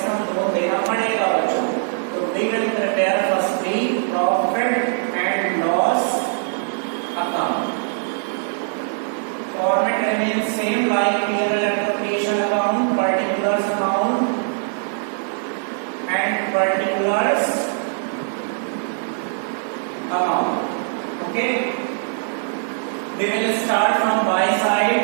on loan देना पड़ेगा बच्चों, तो we will prepare firstly profit and loss account. Format remains same like P&L appropriation account, particulars account and particulars account, okay. We will start from buy side.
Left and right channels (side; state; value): left; silent; 58 dB below the other